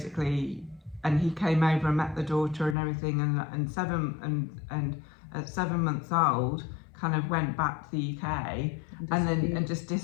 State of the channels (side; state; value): right; drops out; at 2.8 s